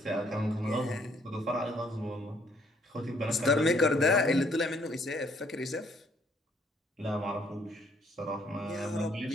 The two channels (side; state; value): both; normal; correlation 0.65